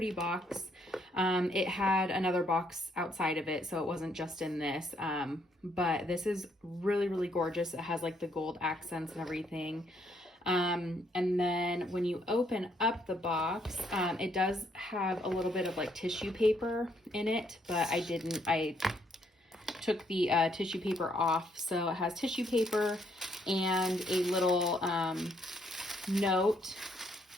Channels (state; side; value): normal; both; correlation 0.71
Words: box. It had another box outside of it, so it wasn't just in this. But this is really, really gorgeous. It has like the gold accents and everything. And then when you open up the box, it does have a little bit of like tissue paper in it, but I took the tissue paper off. So it has tissue paper and a little note